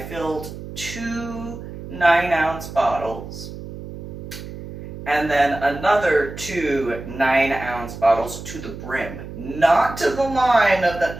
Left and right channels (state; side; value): noise; right; hum, 11 dB below the sound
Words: filled 2 9-ounce bottles, and then another 2 9-ounce bottles to the brim, not to the line of